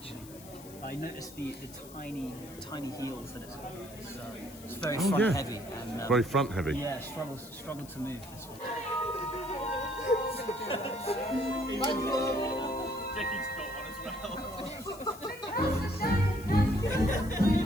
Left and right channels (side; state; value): left; noise; hiss, 18 dB below the sound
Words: I noticed the tiny heels that it's got. It's very front heavy. And, very front heavy. Yeah, struggled to move this one. Dickie's got one as well.